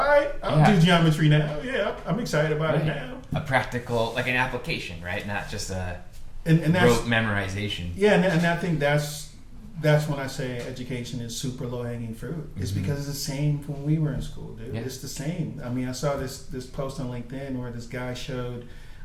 right, I'll do geometry now. Yeah, I'm excited about it now. A practical, like an application, right? Not just a rote memorization. Yeah, and I think that's when I say education is super low-hanging fruit. It's because it's the same when we were in school, dude. Yeah. It's the same. I mean, I saw this post on LinkedIn where this guy showed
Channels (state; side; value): identical; both; correlation 1.00